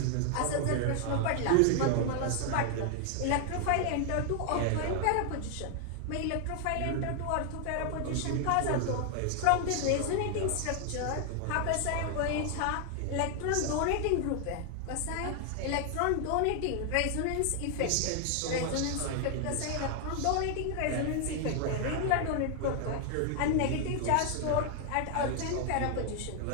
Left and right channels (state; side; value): different; both; correlation 0.00